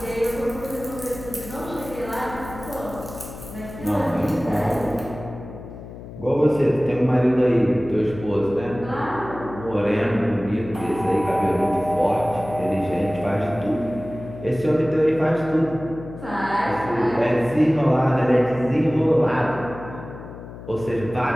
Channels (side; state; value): left; noise; hum, 13 dB below the sound